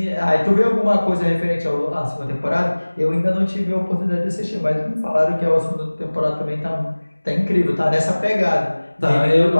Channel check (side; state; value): both; inverted; correlation -1.00